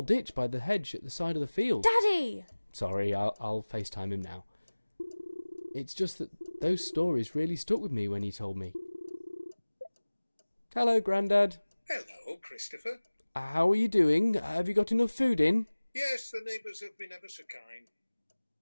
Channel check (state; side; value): inverted; both; correlation -1.00